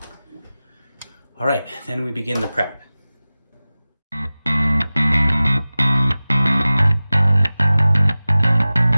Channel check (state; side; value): inverted; both; correlation -0.97